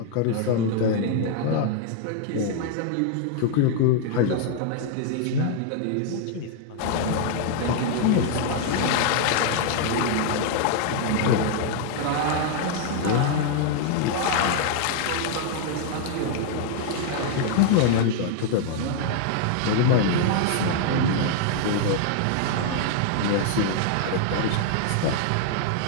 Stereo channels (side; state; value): both; different; correlation 0.00